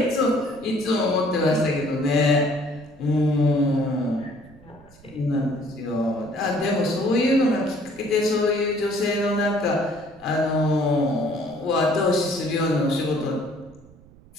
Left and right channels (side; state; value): right; noise; rumble, 25 dB below the sound